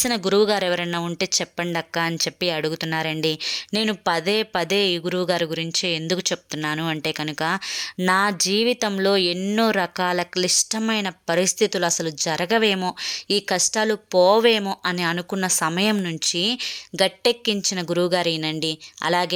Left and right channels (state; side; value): identical; both; correlation 1.00